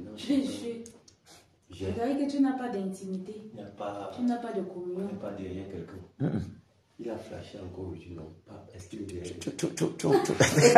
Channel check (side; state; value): both; identical; correlation 1.00